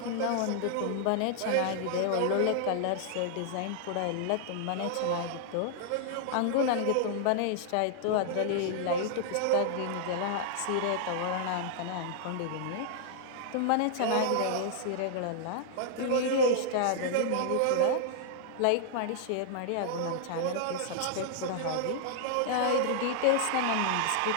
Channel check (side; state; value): both; different; correlation -0.01